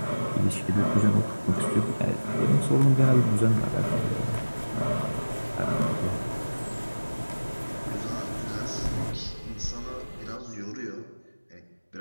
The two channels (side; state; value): both; inverted; correlation -1.00